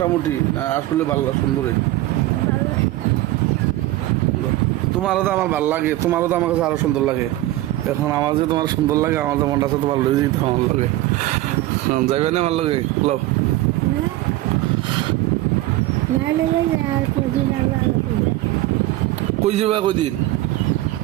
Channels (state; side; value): quieter; left; 16.6 dB